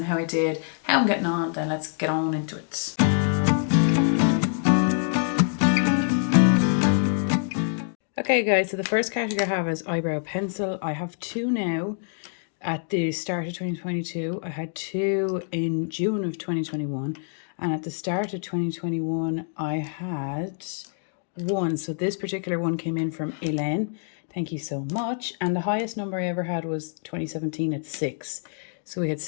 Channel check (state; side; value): silent; right; digital silence